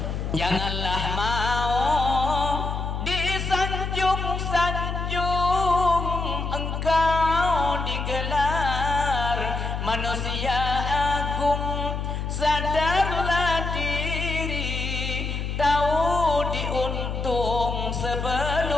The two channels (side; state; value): left; noise; hum, 3 dB below the sound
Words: Janganlah mau disanjung-sanjung engkau digelar manusia agung, sadarlah diri, tahu diuntung